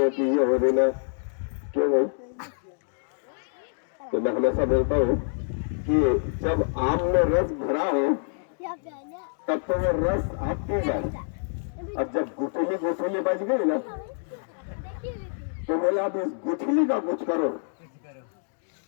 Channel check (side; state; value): right; silent; digital silence